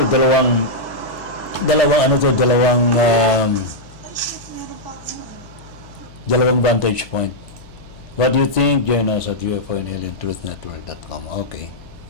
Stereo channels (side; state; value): left; noise; hum, 21 dB below the sound